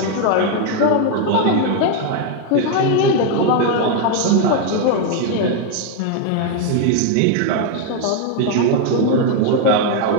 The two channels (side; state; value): both; different; correlation 0.01